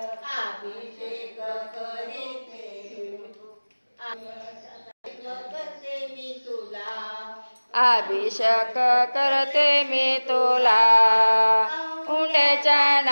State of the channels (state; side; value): inverted; both; correlation -1.00